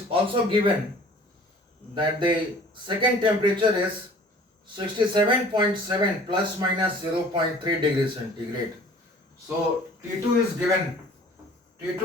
also given that the second temperature is 67.7 plus minus 0.3 degrees centigrade. So T2 is given,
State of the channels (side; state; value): both; normal; correlation 0.50